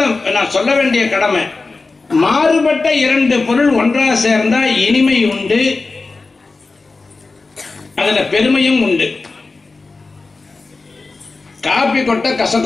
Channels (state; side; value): quieter; right; 3.8 dB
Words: நான் சொல்ல வேண்டிய கடமை, மாறுபட்ட இரண்டு பொருள் ஒன்றாக சேர்ந்தா இனிமை உண்டு, அதுல பெருமையும் உண்டு. காபி கொட்ட